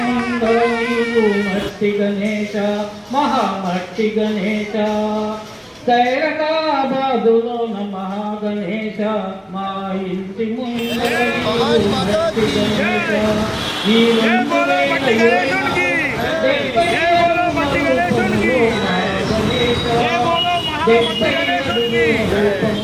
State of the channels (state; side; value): identical; both; correlation 1.00